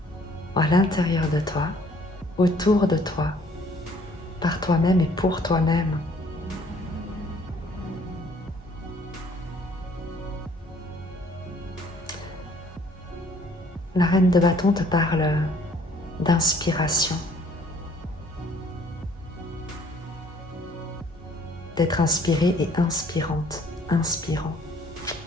à l'intérieur de toi, autour de toi, par toi-même et pour toi-même. La reine de bâton te parle d'inspiration, d'être inspirée et inspirante, inspirant.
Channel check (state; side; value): normal; both; correlation 0.58